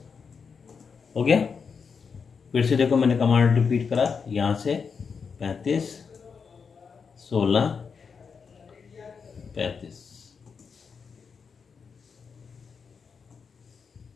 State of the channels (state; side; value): quieter; right; 5.8 dB